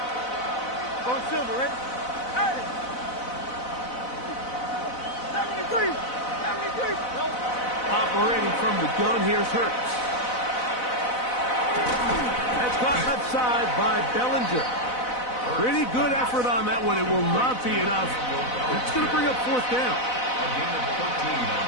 Silver, ready? Hey! 73! Operating from the gun, here's Hurts. That's caught left side by Bellinger. Pretty good effort on that one. It will not be enough. It's going to bring up 4th down. A gain of 14 on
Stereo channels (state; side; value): late; right; 4.0 ms